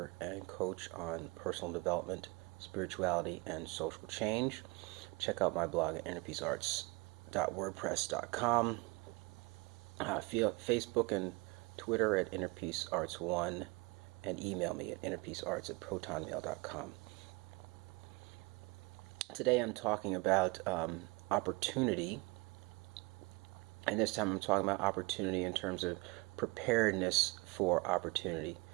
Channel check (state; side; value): quieter; left; 27.0 dB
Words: and coach on personal development, spirituality, and social change. Check out my blog at innerpeacearts.wordpress.com. Facebook and Twitter at innerpeacearts1, and email me at innerpeacearts@protonmail.com. Today I'm talking about opportunity, and this time I'm talking about opportunity in terms of preparedness for opportunity.